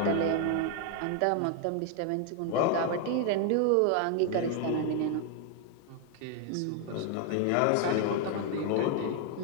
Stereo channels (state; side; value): different; both; correlation 0.00